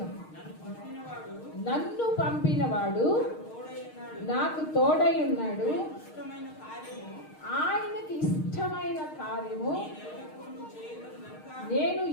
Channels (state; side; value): late; right; 6.5 ms